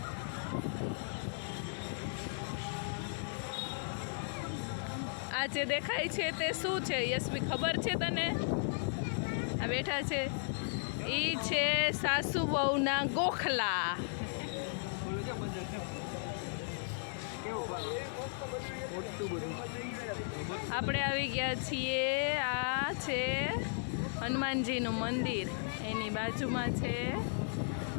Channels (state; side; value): silent; right; digital silence